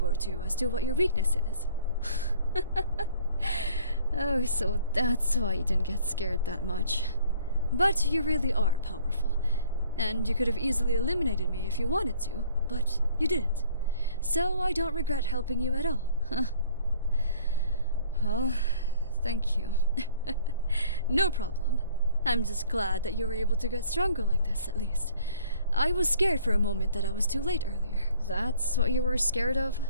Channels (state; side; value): inverted; both; correlation -0.55